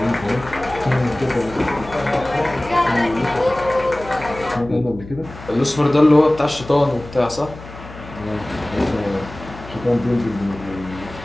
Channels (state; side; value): noise; left; hum, 15 dB below the sound